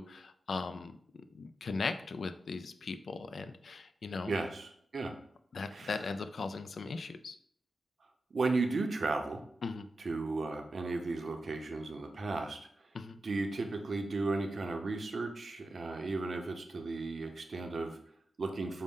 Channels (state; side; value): normal; both; correlation 0.90